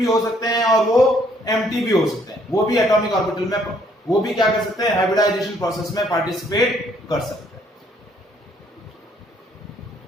हो सकते हैं और वो एम्प्टी भी हो सकते हैं। वो भी एटॉमिक ऑर्बिटल में वो भी क्या कर सकते हैं, हाइब्रिडाइजेशन प्रोसेस में पार्टिसिपेट कर सकते हैं।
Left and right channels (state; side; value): normal; both; correlation 0.66